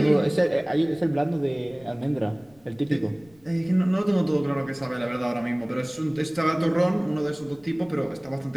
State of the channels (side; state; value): left; noise; rumble, 28 dB below the sound